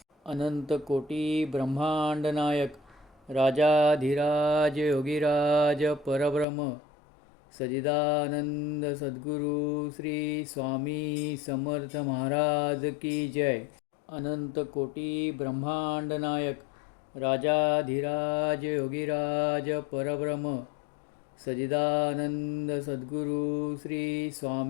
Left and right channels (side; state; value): right; drops out; at 6.5 s